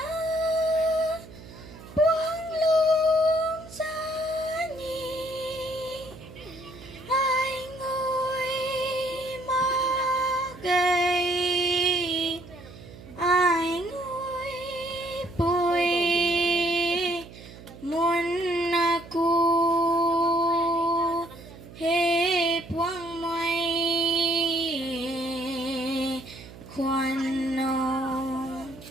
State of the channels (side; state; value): right; noise; hum, 17 dB below the sound